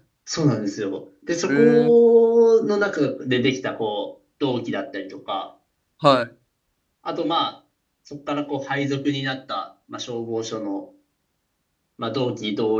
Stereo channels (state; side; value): identical; both; correlation 1.00